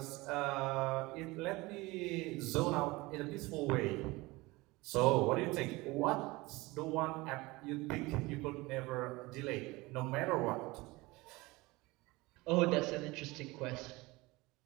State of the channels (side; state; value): left; quieter; 22.1 dB